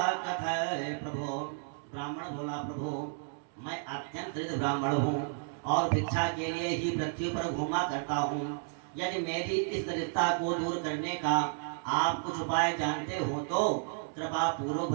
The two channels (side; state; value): left; silent; 56 dB below the other